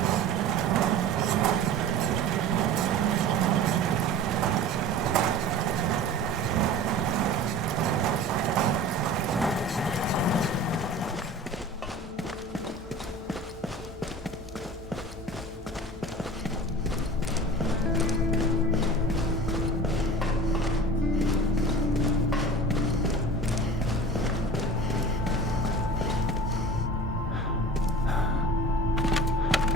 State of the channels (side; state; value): both; normal; correlation 0.38